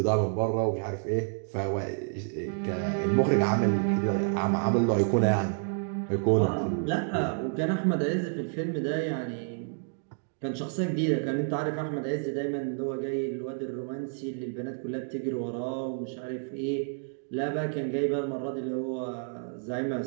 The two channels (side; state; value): left; silent; digital silence